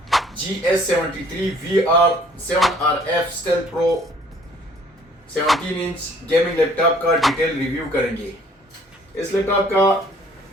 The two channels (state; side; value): normal; both; correlation 0.57